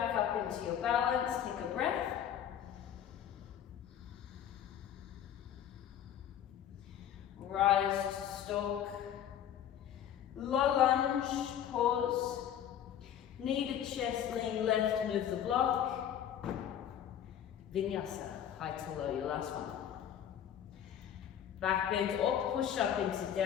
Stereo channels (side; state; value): right; quieter; 9.9 dB